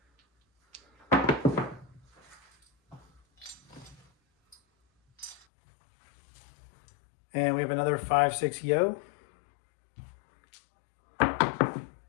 And we have another 5-6 yo.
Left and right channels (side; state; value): right; drops out; at 5.5 s